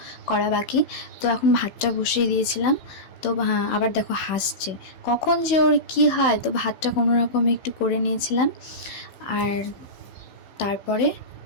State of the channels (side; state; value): right; late; 16 ms